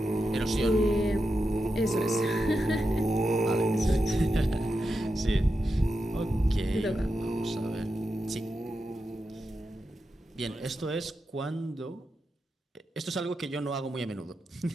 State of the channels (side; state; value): both; normal; correlation 0.88